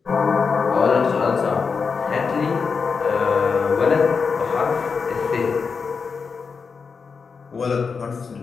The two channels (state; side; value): quieter; right; 5.3 dB